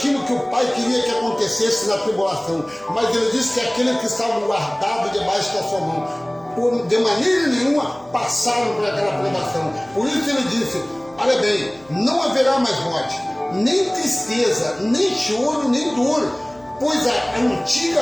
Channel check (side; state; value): left; noise; hum, 27 dB below the sound